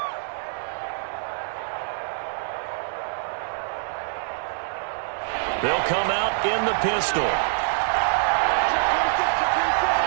They'll come out in the pistol.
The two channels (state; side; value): silent; left; 62 dB below the other